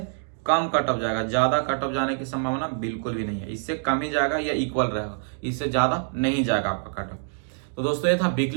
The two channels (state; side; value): silent; left; digital silence